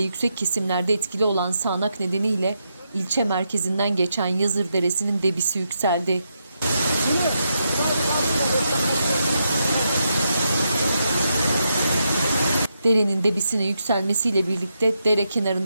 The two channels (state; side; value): inverted; both; correlation -0.83